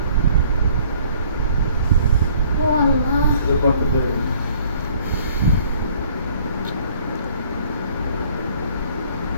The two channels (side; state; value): both; inverted; correlation -0.58